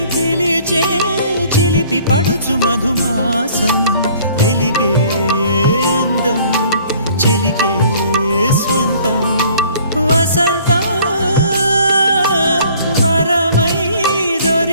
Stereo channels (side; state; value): both; inverted; correlation -0.55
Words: పిలిచే చిలిపి పడుచు మధుమాసం వెలిగే అందం చెలికే స్వంతం వసంతం వరమై